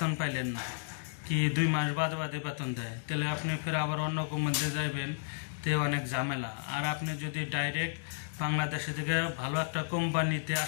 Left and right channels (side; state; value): right; silent; digital silence